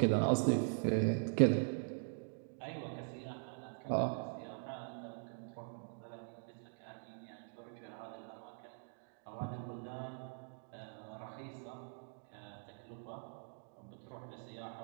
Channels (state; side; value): silent; left; digital silence